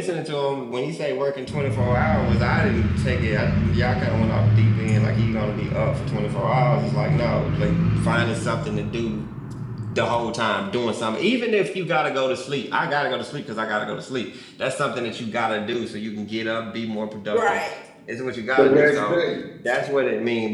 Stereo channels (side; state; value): both; identical; correlation 1.00